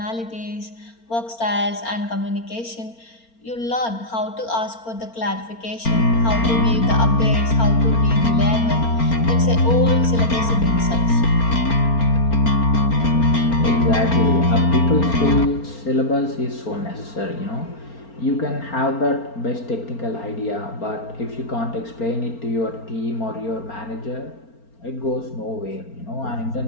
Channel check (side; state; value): right; late; 4.4 ms